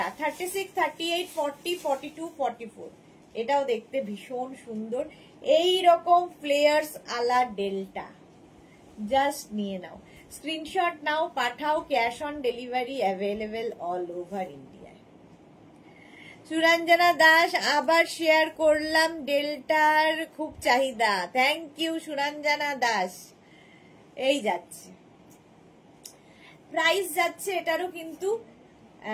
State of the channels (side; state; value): both; identical; correlation 1.00